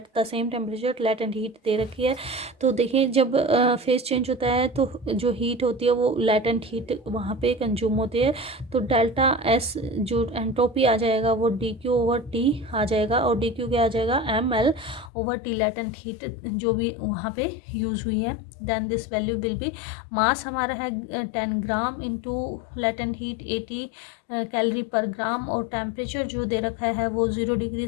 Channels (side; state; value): right; drops out; at 15.1 s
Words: the same temperature. Latent heat दे रखी है। तो देखिए जब फेज चेंज होता है तो जो हीट होती है वो लेटेंट हीट वहाँ पे कंज्यूम होती है। तो डेल्टा S जो एंट्रोपी आ जाएगा वो DQ/T आ जाएगा, और DQ क्या आ जाएगा ml/T लेटेंट हीट जो भी वहाँ पे यूज हुई है। Then this value will be, mass हमारा है 10 gram into latent heat 80 calorie per gram, और टेम्परेचर जो दे रखा है वो 0 डिग्री